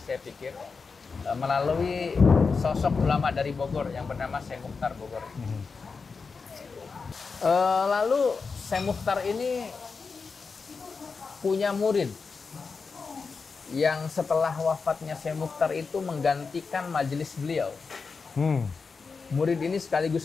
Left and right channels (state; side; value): quieter; right; 4.8 dB